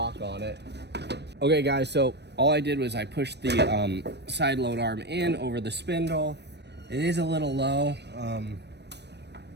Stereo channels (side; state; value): left; late; 0.50 ms